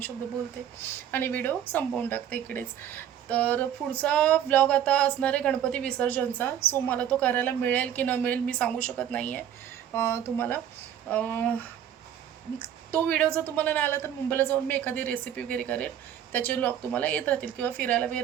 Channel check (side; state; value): left; quieter; 10.1 dB